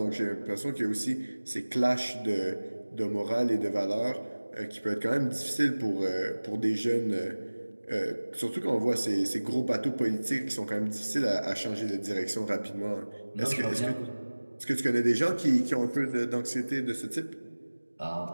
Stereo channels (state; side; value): inverted; both; correlation -1.00